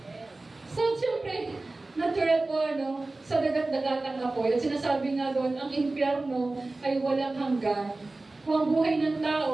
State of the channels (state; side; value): quieter; left; 3.1 dB